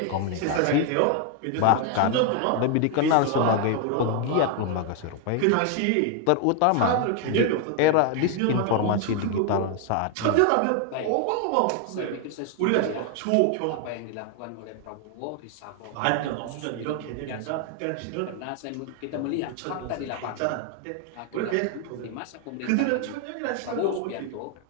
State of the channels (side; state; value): both; different; correlation 0.01